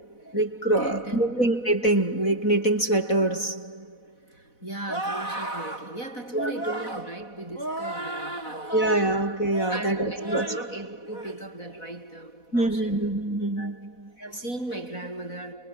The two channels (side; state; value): right; late; 4.1 ms